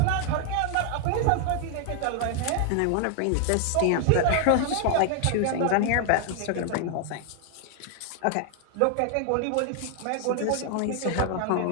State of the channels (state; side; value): different; both; correlation 0.00